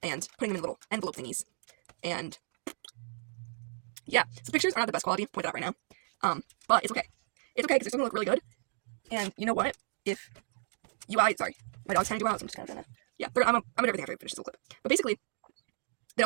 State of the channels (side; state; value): left; silent; 55 dB below the other